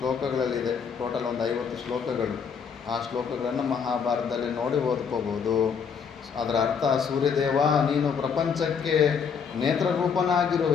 ಟೋಟಲ್ ಒಂದು 50 ಶ್ಲೋಕಗಳು. ಆ ಶ್ಲೋಕಗಳನ್ನು ಮಹಾಭಾರತದಲ್ಲಿ ನೋಡಿ ಓದ್ಕೋಬೋದು. ಅದರ ಅರ್ಥ, ಸೂರ್ಯದೇವ ನೀನು ಪ್ರಪಂಚಕ್ಕೆ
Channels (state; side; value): quieter; right; 6.5 dB